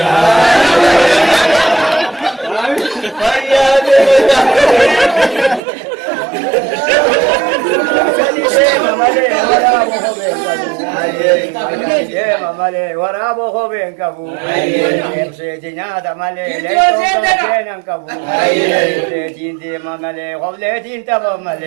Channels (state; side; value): drops out; left; at 5.6 s